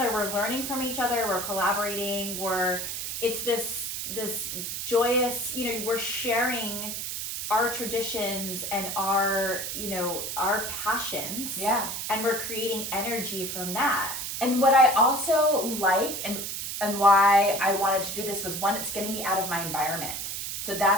We're learning from each other. We're collaborating. It's this joyous, we're sharing our traditions and our passions. Yeah. And we're creating energy from that. And what I also like and why I wanted to do this was, one, it's getting me out of my environment. So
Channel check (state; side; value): noise; right; hiss, 4 dB below the sound